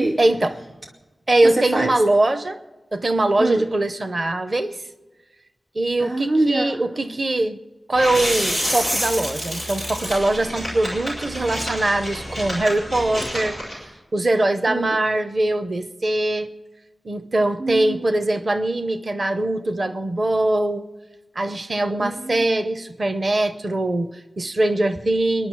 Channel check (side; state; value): both; normal; correlation 0.96